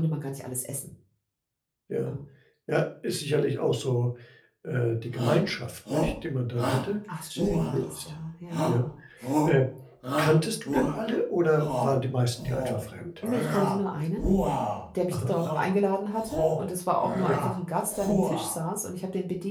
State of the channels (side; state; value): both; identical; correlation 1.00